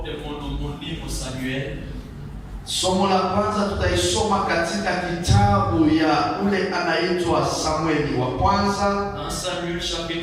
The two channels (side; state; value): both; identical; correlation 1.00